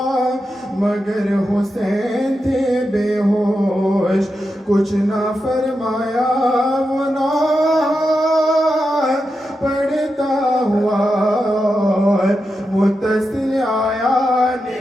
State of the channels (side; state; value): both; normal; correlation 0.88